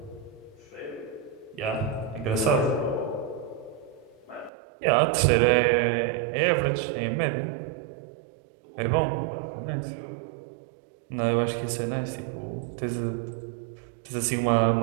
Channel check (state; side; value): drops out; left; at 4.5 s